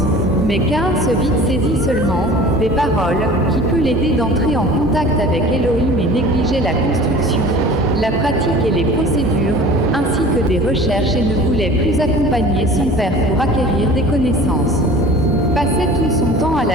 Mais Caïn se vit saisi seulement des paroles, qui peut l'aider d'entrer en contact avec Elohim, et négligeait la construction, la pratique et les procédures, ainsi que des recherches, et ne voulait plus accompagner son père pour acquérir des connaissances. Passait tout son temps à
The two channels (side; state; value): both; normal; correlation 0.43